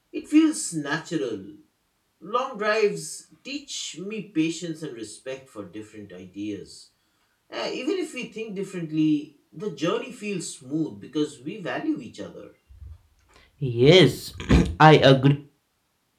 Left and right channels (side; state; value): both; identical; correlation 1.00